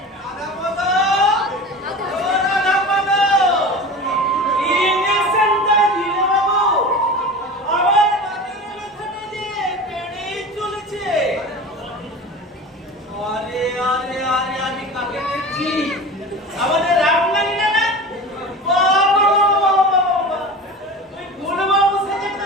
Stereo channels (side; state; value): both; normal; correlation 0.33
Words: আমাদের রামলালি না না বাবা বাবা বাবা তুই গুণবাবু সাথে তো